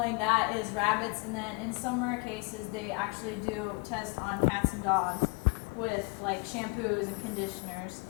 that is rabbits, and then in some rare cases they actually do test on cats and dogs with like shampoos and conditioners.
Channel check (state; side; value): quieter; right; 28.9 dB